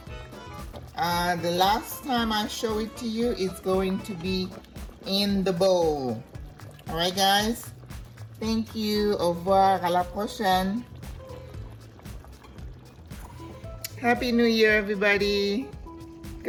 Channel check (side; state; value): both; identical; correlation 1.00